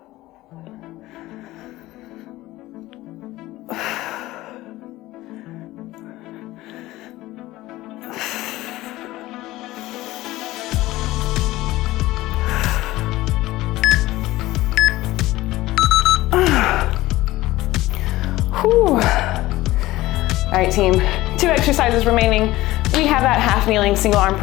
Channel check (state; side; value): quieter; right; 17.5 dB